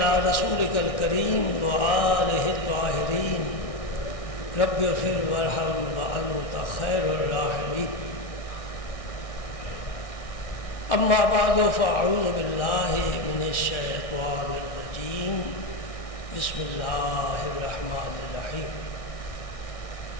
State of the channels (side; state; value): right; late; 1.6 ms